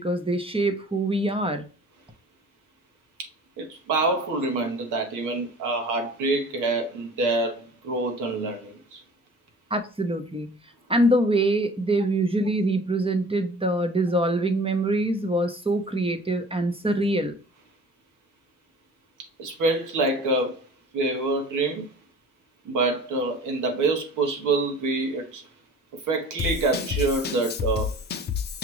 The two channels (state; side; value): normal; both; correlation 0.44